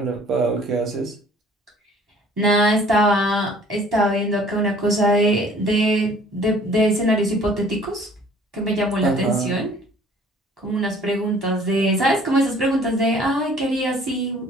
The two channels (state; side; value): normal; both; correlation 0.54